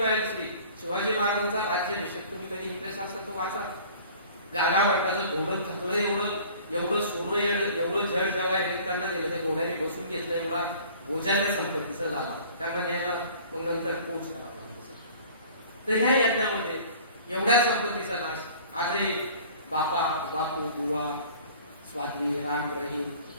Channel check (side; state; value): both; inverted; correlation -0.48